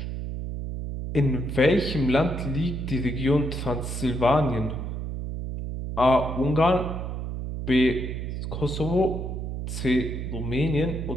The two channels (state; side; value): noise; right; hum, 5 dB below the sound